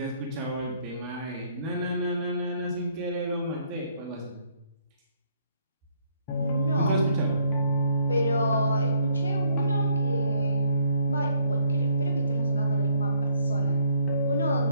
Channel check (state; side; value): inverted; both; correlation -0.68